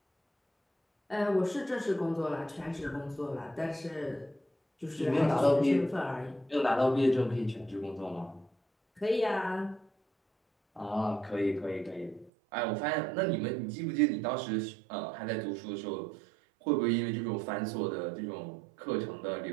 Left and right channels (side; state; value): left; drops out; at 12.3 s